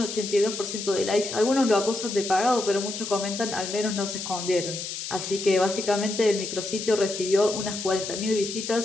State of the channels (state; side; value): noise; left; hiss, 6 dB below the sound